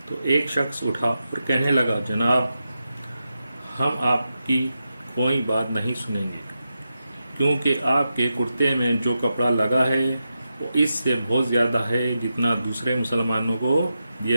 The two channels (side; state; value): both; inverted; correlation -0.89